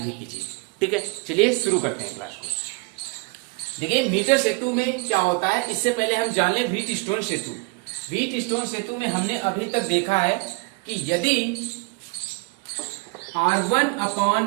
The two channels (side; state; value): left; quieter; 27.9 dB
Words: कीजिए। ठीक है, चलिए शुरू करते हैं क्लास को। देखिए, मीटर सेतु में क्या होता है, इससे पहले हम जान लें व्हीटस्टोन सेतु। व्हीटस्टोन सेतु में हमने अभी तक देखा है कि यदि